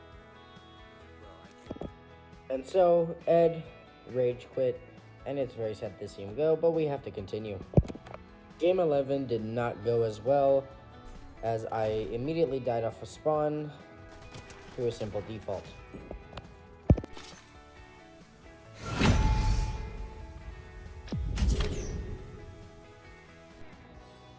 mad. Bro, I can't. And so, Ed rage quit, and it's very sad to see him go, but we have to continue. Game 11 did not go as well, as I immediately died off of spawn through a simple default.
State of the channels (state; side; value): identical; both; correlation 1.00